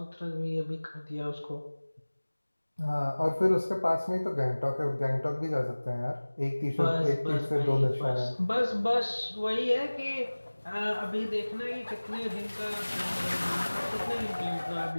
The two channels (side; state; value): both; inverted; correlation -1.00